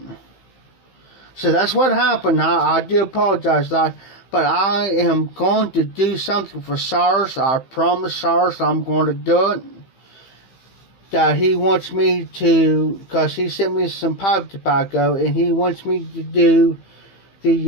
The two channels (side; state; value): right; late; 15 ms